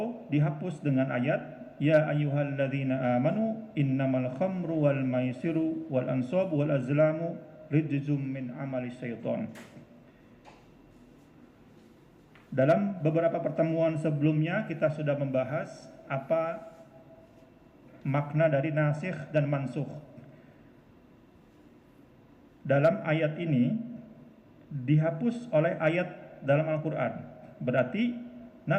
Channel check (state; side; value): identical; both; correlation 1.00